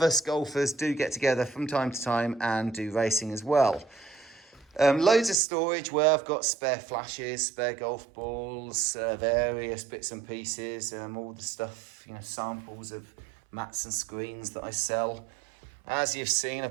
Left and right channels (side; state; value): left; drops out; at 5.4 s